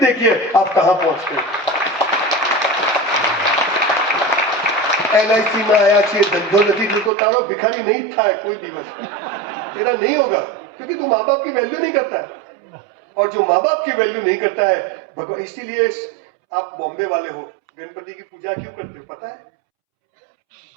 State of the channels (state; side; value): drops out; left; at 7.1 s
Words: आप कहां पहुंचते हैं। LIC में आया चाहिए धंधो नदी तो तारो भिखारी नहीं था कोई दिवस तेरा नहीं होगा, क्योंकि तू माँ बाप की वैल्यू नहीं करता है। और जो माँ बाप की वैल्यू नहीं करता है भगवान, इसीलिए आप बॉम्बे वाले हो, गणपति की पूजा क्यों करते हो पता है?